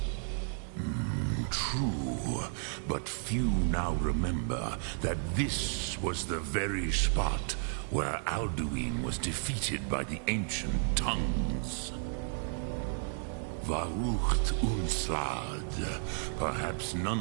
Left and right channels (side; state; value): left; silent; 56 dB below the other